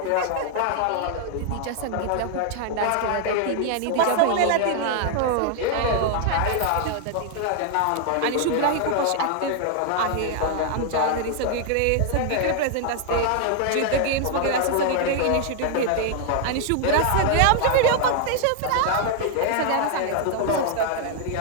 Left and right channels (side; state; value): both; different; correlation 0.00